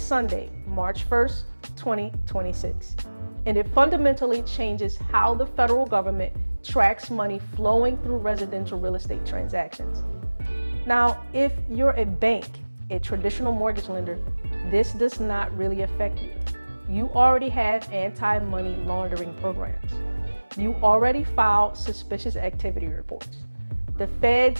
March 1st, 2026. And it fundamentally changes how the federal government tracks money flowing through residential real estate transactions. Now, if you're a bank, a traditional mortgage lender, this does not really affect you. You already have anti-money laundering programs. You already filed suspicious activity reports. The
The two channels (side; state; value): both; inverted; correlation -1.00